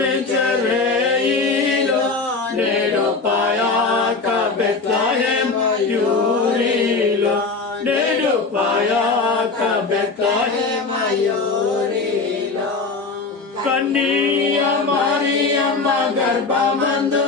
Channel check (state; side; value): quieter; right; 4.1 dB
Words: నేడు పాయాక బెత్లెహేమ్ యూరిలో నేడు పాయాక బెత్లెహేమ్ యూరిలో కన్నియ మరియమ్మ